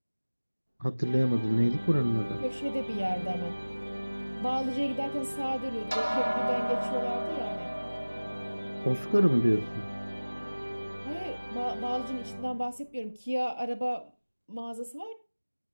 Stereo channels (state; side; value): inverted; both; correlation -1.00